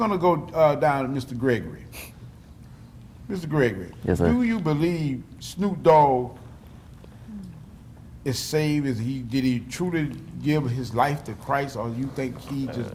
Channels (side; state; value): both; identical; correlation 1.00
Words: to go down to Mr. Gregorey. Mr. Gregorey, Yes, sir. do you believe Snoop Dogg is saved? Did he truly give his life to Christ, or you think he